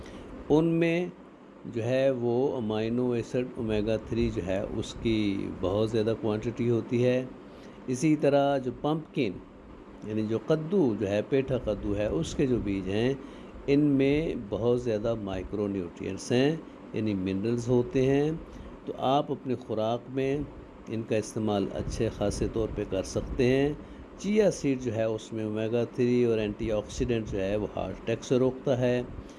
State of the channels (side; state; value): both; identical; correlation 1.00